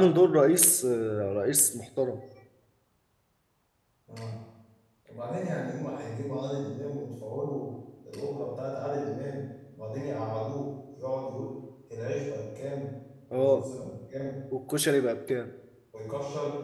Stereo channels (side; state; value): both; identical; correlation 1.00